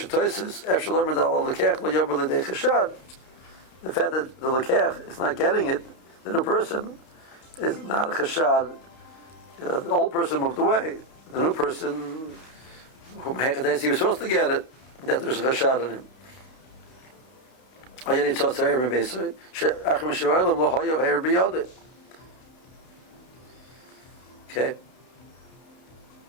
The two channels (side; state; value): right; late; 31 ms